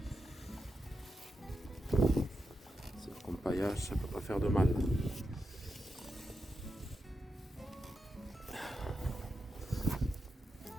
C'est comme paillage, ça peut pas faire de mal.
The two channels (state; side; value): normal; both; correlation 0.87